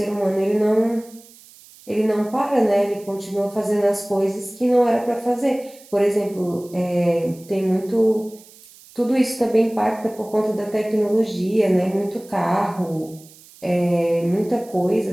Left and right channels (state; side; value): noise; right; hiss, 23 dB below the sound